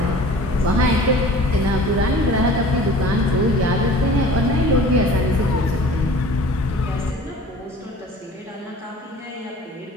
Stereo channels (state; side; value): normal; both; correlation 0.44